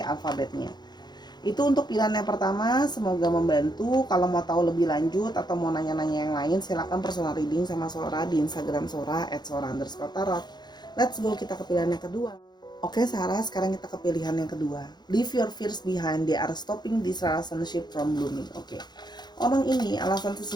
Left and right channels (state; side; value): late; right; 0.21 ms